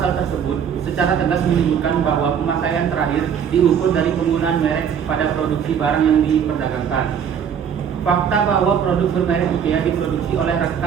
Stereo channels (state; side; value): quieter; left; 7.9 dB